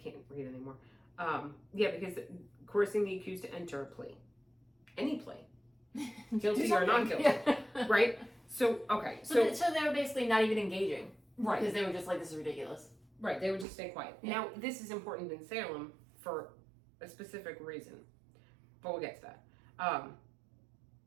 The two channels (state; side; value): drops out; left; at 13.7 s